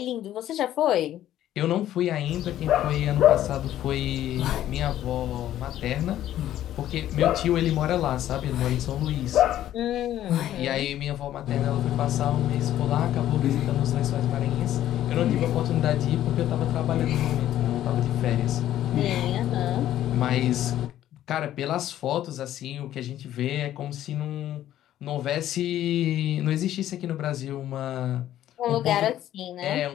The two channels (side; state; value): right; quieter; 12.4 dB